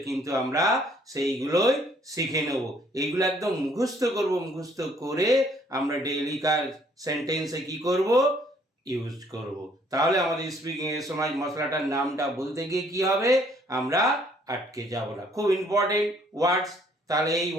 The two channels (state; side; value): normal; both; correlation 0.63